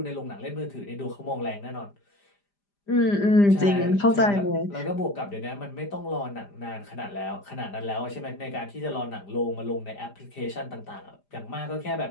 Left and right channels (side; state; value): right; late; 5.0 ms